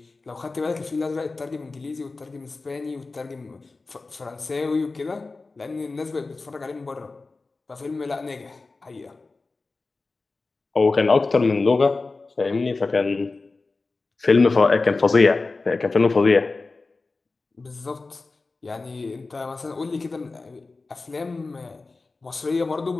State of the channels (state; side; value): quieter; right; 3.7 dB